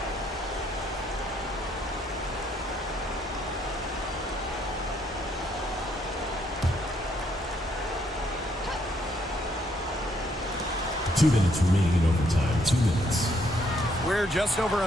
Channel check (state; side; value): normal; both; correlation 0.71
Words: Two minutes remaining in overtime. 2 minutes. We're just over